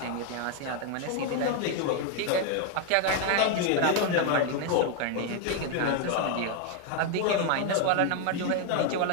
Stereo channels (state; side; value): different; both; correlation 0.01